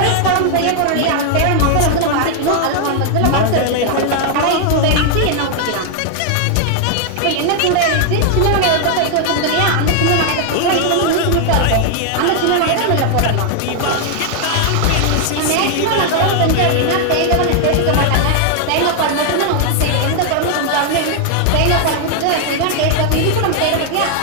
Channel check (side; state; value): both; different; correlation 0.00